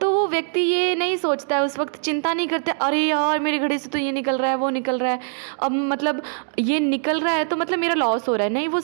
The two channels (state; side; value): silent; left; digital silence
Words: वो व्यक्ति ये नहीं सोचता है, उस वक्त चिंता नहीं करता, अरे यार मेरे घड़े से तो ये निकल रहा है, वो निकल रहा है, अब मतलब ये निकल रहा है तो मतलब मेरा लॉस हो रहा है। नहीं, वो